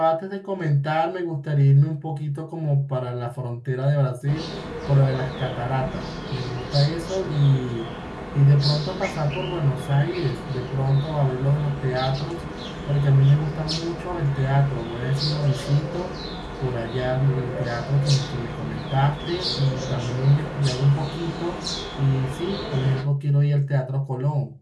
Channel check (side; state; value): both; identical; correlation 1.00